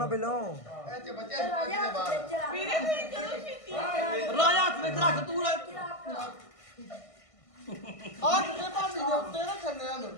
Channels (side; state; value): right; late; 1.6 ms